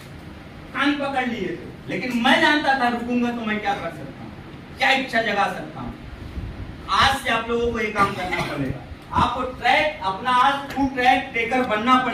कान पकड़ लिए थे, लेकिन मैं जानता था रुकूंगा तो मैं क्या कर सकता हूँ, क्या इच्छा जगा सकता हूँ। आज से आप लोगों को ये काम करना पड़ेगा। आपको ट्रैक अपना आज ट्रू ट्रैक टेकर बनना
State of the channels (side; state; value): both; identical; correlation 1.00